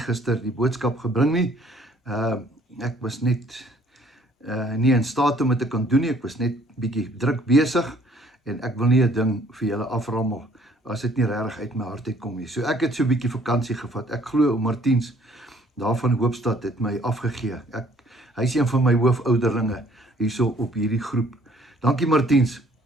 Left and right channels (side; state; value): both; normal; correlation 0.60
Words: die boodskap gebring nie. Ek was net nie in staat om dit te kan doen nie. Ek was net bietjie druk besig en ek wil nie 'n ding vir julle aframmel as dit nie regtig uit my hart uitkom nie. So ek het so 'n bietjie vakansie gevat. Ek glo ou Martiens daar van Hoopstad het my afgegee. Hy is een van my hoofouderlinge hierso op hierdie groep. Dankie Martiens,